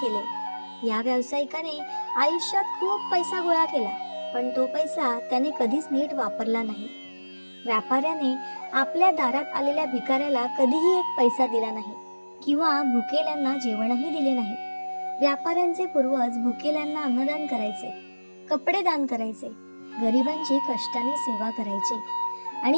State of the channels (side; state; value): both; inverted; correlation -1.00